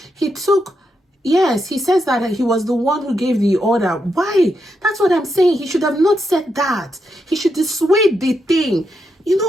yes, he says that he was the one who gave the order. Why? That's what I'm saying. He should have not said that. He should dissuade the thing.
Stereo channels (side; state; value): both; normal; correlation 0.83